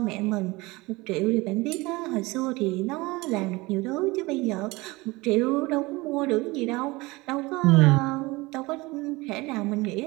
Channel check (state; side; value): quieter; left; 22.6 dB